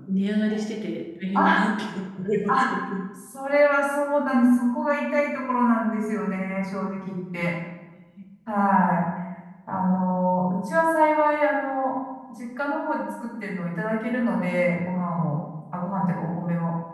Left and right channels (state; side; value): identical; both; correlation 1.00